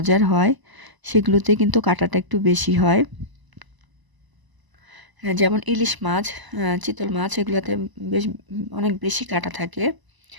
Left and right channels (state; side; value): late; left; 1.0 ms